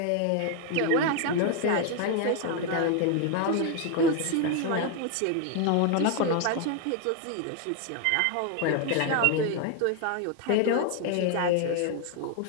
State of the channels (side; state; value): both; different; correlation 0.01